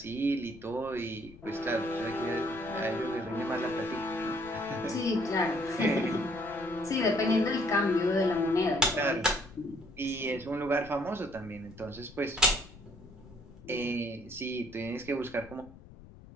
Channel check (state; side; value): noise; left; rumble, 20 dB below the sound